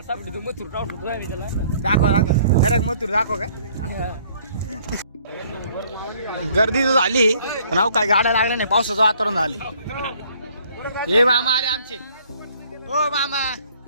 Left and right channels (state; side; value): inverted; both; correlation -0.60